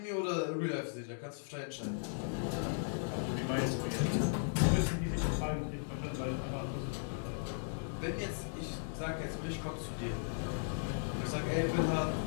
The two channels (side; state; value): right; silent; digital silence